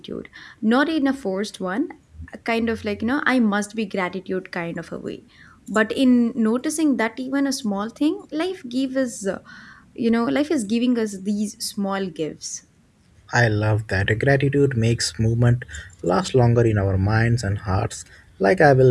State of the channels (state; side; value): identical; both; correlation 1.00